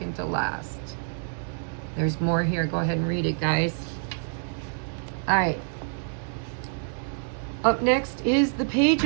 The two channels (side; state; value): left; silent; digital silence